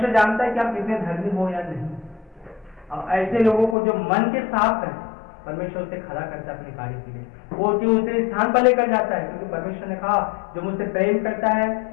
जानता है कि आप कितने धर्मी हो या नहीं। और ऐसे लोगों को जो मन के साफ है, परमेश्वर से खड़ा करता है अपने कार्य के लिए, वो जो उसे स्थान पर लेकर जाता है, क्योंकि परमेश्वर ने कहा जो मुझसे प्रेम करता है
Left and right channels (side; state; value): right; drops out; at 3.8 s